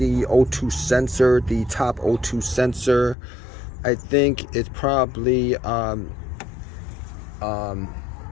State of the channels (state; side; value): drops out; right; at 3.2 s